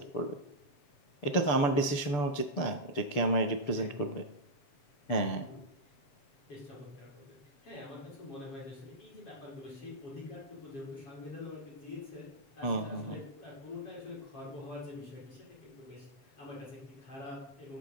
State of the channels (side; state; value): right; late; 6.9 ms